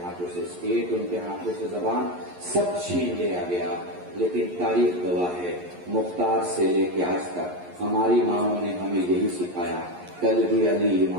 ہاتھوں سے اسٹیٹ، ان کے ہاتھوں سے زبان، سب چھین لیا گیا. لیکن تاریخ گواہ ہے، مختار سے لے کے آج تک ہماری ماؤں نے ہمیں یہی سکھایا. کل بھی علی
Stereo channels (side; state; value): left; late; 11 ms